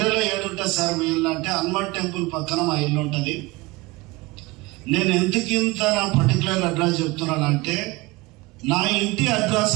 ఏడుంటుంది సార్ మీ ఇల్లు అంటే హనుమాన్ టెంపుల్ పక్కన మా ఇల్లు ఉంటుంది. నేను ఎందుకు ఇంత నా పర్టికులర్ అడ్రస్ చెప్తున్నానంటే నా ఇంటి అడ్రస్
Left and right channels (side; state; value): left; quieter; 22.7 dB